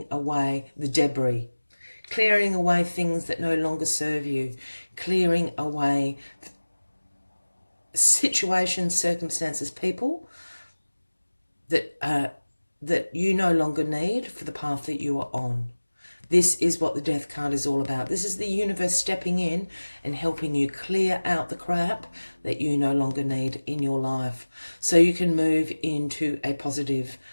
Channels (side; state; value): both; inverted; correlation -1.00